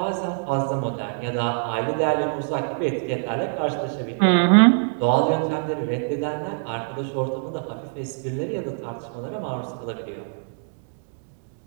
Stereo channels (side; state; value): left; silent; digital silence